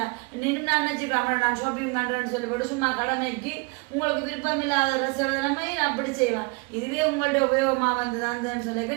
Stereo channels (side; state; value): left; quieter; 30.1 dB